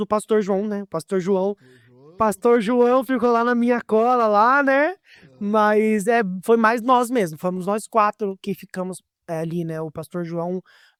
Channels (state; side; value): identical; both; correlation 1.00